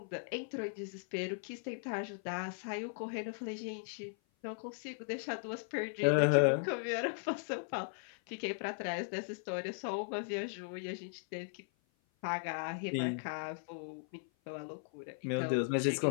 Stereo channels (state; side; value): silent; right; 53 dB below the other